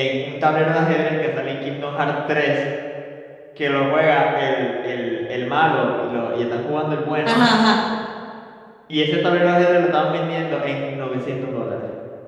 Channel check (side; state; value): both; identical; correlation 1.00